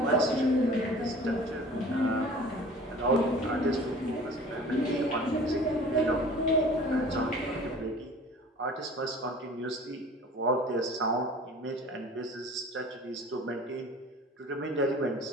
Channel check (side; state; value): both; normal; correlation 0.44